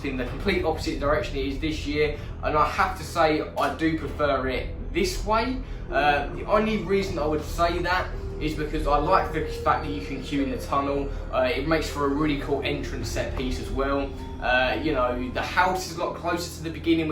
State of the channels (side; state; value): both; identical; correlation 1.00